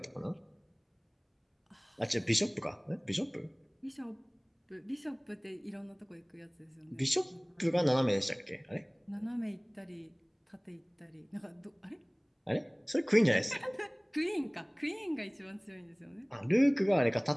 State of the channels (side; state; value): both; identical; correlation 1.00